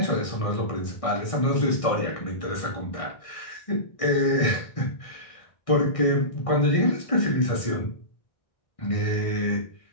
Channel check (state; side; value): late; right; 1.6 ms